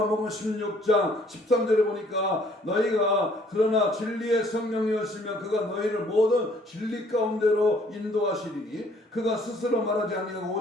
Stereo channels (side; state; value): both; normal; correlation 0.61